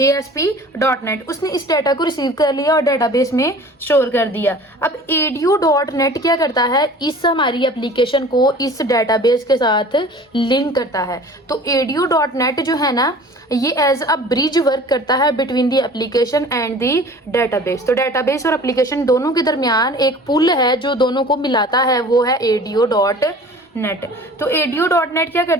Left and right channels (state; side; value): normal; both; correlation 0.44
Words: उसने इस डाटा को रिसीव कर लिया और डेटाबेस में स्टोर कर दिया। अब ADO.NET क्या करता है, इस हमारी एप्लीकेशन को इस डेटाबेस के साथ लिंक करता है। तो ADO.NET जो है ना ये एज अ ब्रिज वर्क करता है between the application and the database. तो डेटाबेस और एप्लीकेशन दोनों के दरमियान एक पुल है जो दोनों को मिलाता है, वो है ADO.NET। तो ADO.NET क्या